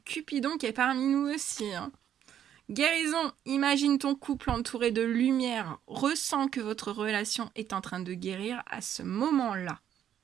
Cupidon qui est parmi nous aussi. Hein. Guérison. Imagine ton couple entouré de lumière. Ressens que votre relation est en train de guérir à ce moment-là.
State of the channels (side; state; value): left; quieter; 10.0 dB